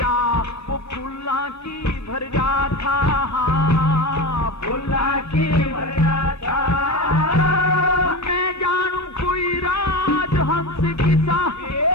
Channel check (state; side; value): normal; both; correlation 0.24